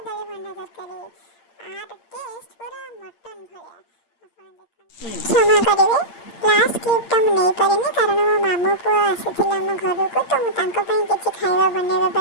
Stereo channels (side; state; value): right; late; 8.7 ms